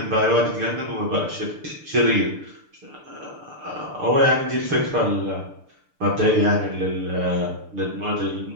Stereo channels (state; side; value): late; left; 6.7 ms